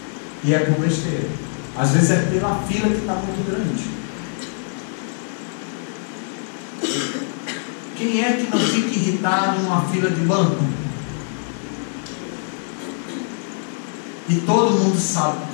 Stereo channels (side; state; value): right; silent; digital silence